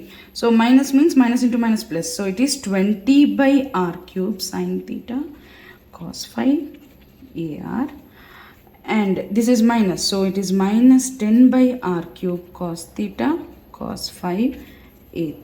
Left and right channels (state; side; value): identical; both; correlation 1.00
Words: So minus means minus into minus plus. So it is 20 by R cube sin theta cos phi AR and this is minus, so it is minus 10 by R cube cos theta cos phi A